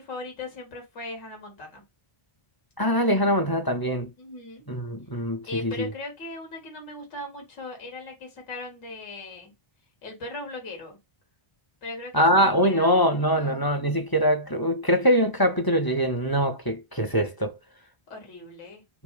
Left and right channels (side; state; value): right; late; 1.0 ms